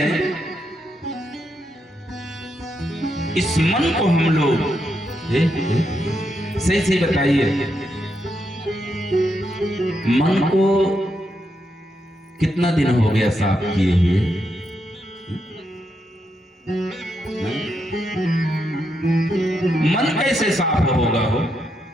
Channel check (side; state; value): both; normal; correlation 0.81